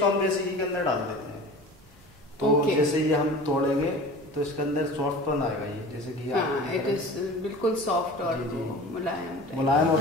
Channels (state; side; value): normal; both; correlation 0.38